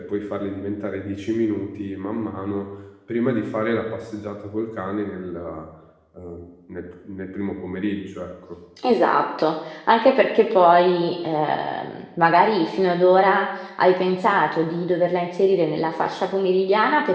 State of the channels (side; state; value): both; identical; correlation 1.00